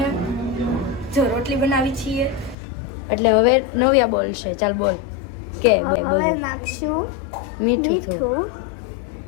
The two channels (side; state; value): right; drops out; at 2.6 s